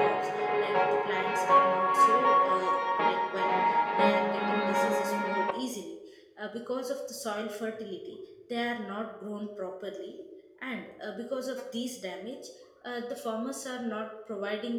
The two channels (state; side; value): identical; both; correlation 1.00